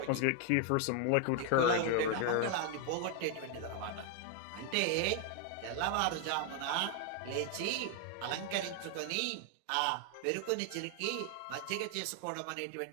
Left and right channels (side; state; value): both; different; correlation 0.00